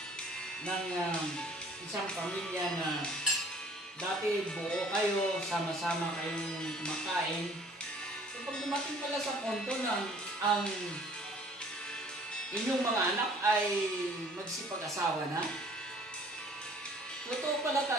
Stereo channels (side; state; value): both; normal; correlation 0.54